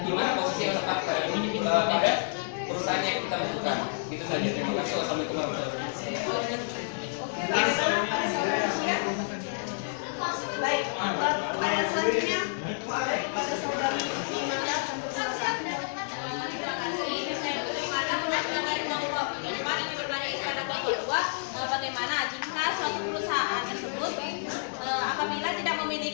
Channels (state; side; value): silent; right; digital silence